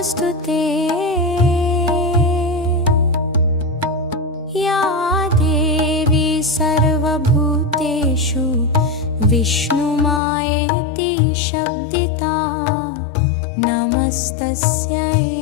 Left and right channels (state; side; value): drops out; right; at 10.2 s